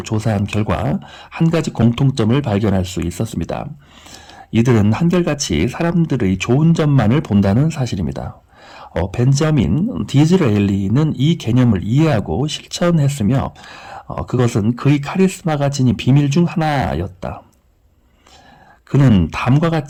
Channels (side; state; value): both; identical; correlation 1.00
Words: 조사한 결과 한 가지 공통점을 발견할 수 있었습니다. 이들은 한결같이 사람들의 좋은 점만을 본다는 사실입니다. 벤저민 디즈레일리는 이 개념을 이해하고 실천했으며 그것은 그의 카리스마가 지닌 비밀 중 하나였다. 그는 다음과